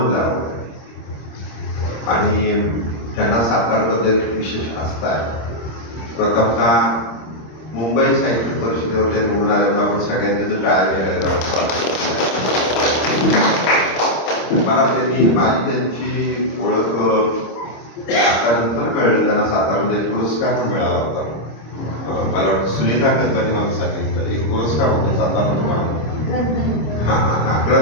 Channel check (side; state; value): right; late; 26 ms